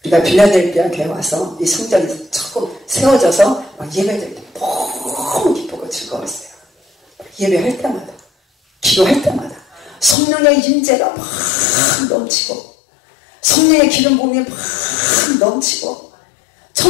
우리가 빌라델피아 교회 와서 이 성전이 조금 세워져서 막 예배드릴 때 너무 기쁘고 즐거웠어요. 예배할 때마다, 기도할 때마다 성령의 임재가 막 넘치고, 성령의 기름 부음이 막 넘치고,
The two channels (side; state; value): right; drops out; at 10.2 s